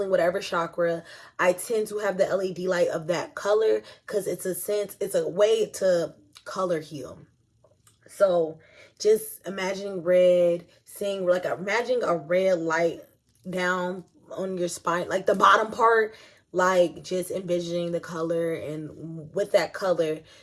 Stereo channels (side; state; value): both; identical; correlation 1.00